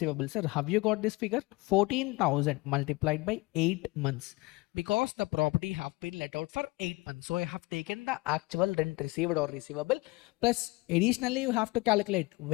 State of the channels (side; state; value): right; quieter; 23.3 dB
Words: Sir, have you got this figure? 14,000 multiplied by 8 months, because the property have been let out for 8 months. So I have taken the actual rent received or receivable, plus additionally you have to calculate